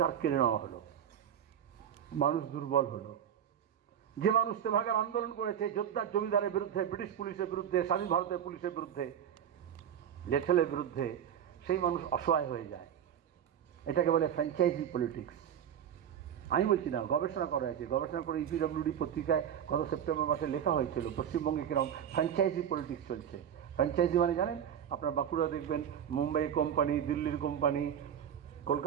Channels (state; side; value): quieter; left; 9.2 dB